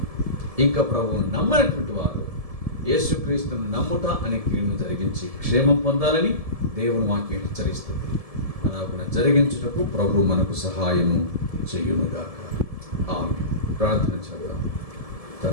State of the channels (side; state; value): left; late; 1.7 ms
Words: ఇంకా ప్రభువును నమ్మనటువంటి వారు యేసుక్రీస్తును నమ్ముట అనే క్రియను జరిగించి క్షేమం పొందాలని దేవుని వాక్యం హెచ్చరిస్తుంది. అలాగున జరిగించుటకు ప్రభు మనకు సహాయము చెయ్యునుగాక. ఆమేన్. ప్రార్థన చేద్దాం.